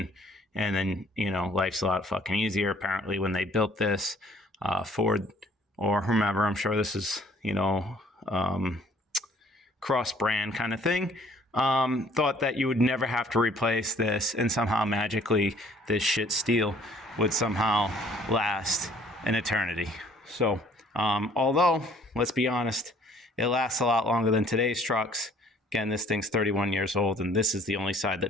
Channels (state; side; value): normal; both; correlation 0.57